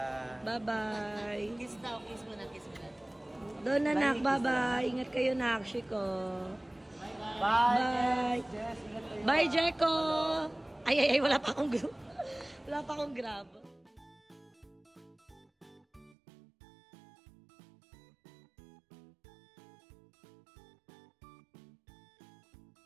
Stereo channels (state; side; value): drops out; left; at 16.2 s